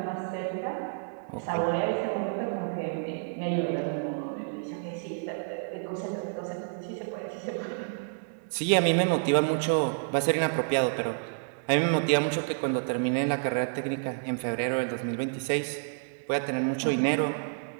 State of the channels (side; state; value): left; silent; digital silence